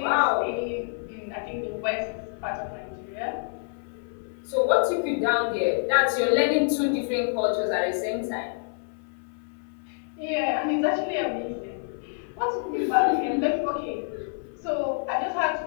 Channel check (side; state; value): right; silent; 60 dB below the other